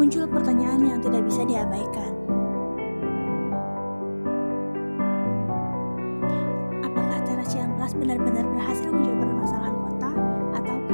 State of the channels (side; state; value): both; inverted; correlation -1.00